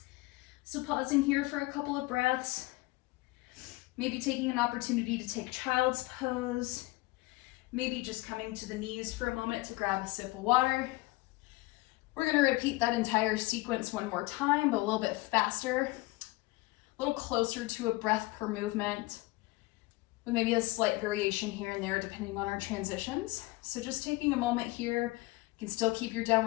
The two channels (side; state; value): right; quieter; 21.8 dB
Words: So pausing here for a couple of breaths. Maybe taking an opportunity to take child's pose. Maybe just coming to the knees for a moment to grab a sip of water. We're going to repeat that entire sequence one more time, but a little bit faster, a little closer to a breath per movement, with maybe a slight variation here and there depending on our transitions. So just taking a moment here, you can still keep your